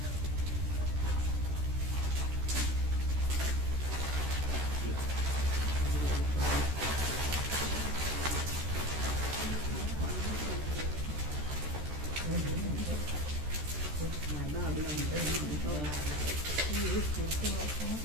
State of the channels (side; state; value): left; late; 13 ms